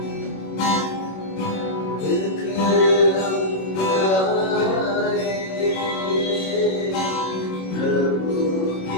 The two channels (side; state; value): right; late; 26 ms